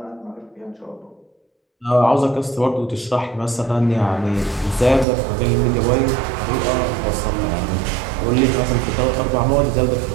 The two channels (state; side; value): drops out; left; at 5.1 s